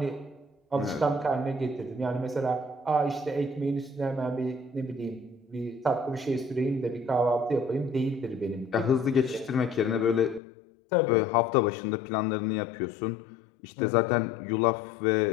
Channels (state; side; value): drops out; right; at 10.4 s